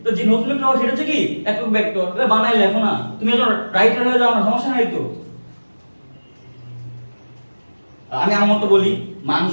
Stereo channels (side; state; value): both; inverted; correlation -1.00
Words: তো যে নতুন ভেক্টর সেটা হচ্ছে কি, একক ভেক্টর। এটা বানাই লেখো না, তুমি যখন রাইটার হয়ে যাও না, সমস্যা নাই তো। আমি আমার মতো বলি, মান